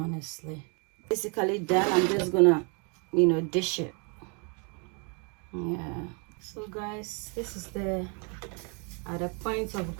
Basically done. I'm just gonna, you know, dish it. Yeah. So guys, this is the at the point of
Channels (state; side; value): quieter; left; 35.3 dB